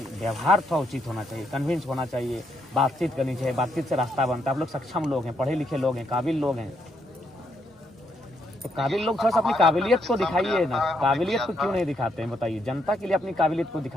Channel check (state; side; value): normal; both; correlation 0.76